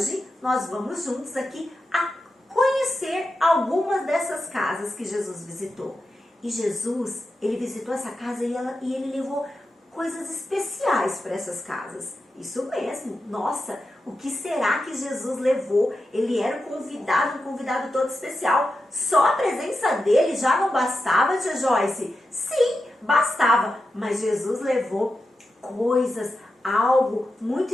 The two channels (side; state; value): both; normal; correlation 0.90